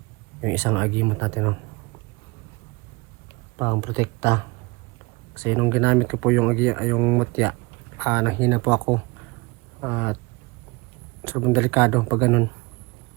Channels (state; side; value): quieter; left; 25.2 dB